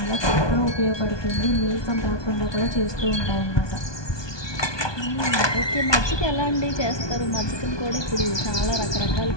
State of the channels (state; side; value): late; right; 1.2 ms